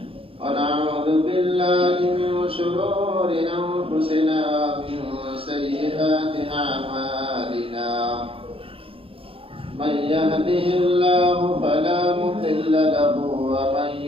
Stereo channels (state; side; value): late; left; 0.27 ms